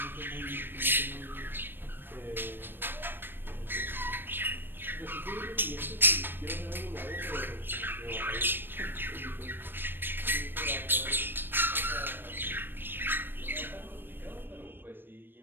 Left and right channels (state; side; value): late; left; 0.097 ms